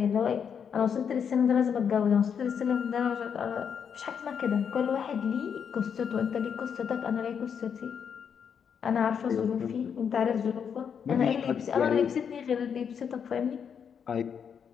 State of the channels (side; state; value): right; quieter; 7.3 dB